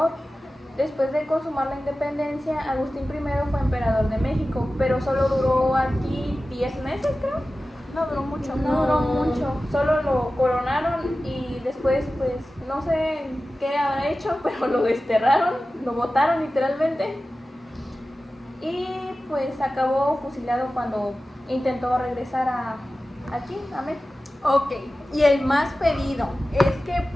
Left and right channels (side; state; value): both; normal; correlation 0.95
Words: Después de consumar la independencia, Agustín I fue emperador de México, pero solo duró aquí 10 meses, creo. No duró mucho. No duró mucho, solo lo coronaron y después, pues, no sé qué habrá hecho, pero lo desterraron, lo botaron literalmente. Y pues acabó fusilado cuando intentó regresar aquí, a México. Ok, y el más pedido es que